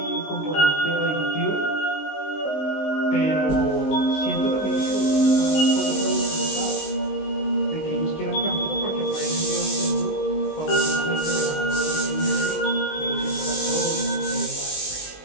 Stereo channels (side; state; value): right; late; 19 ms